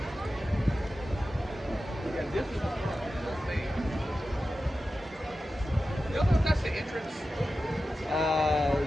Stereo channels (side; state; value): both; normal; correlation 0.93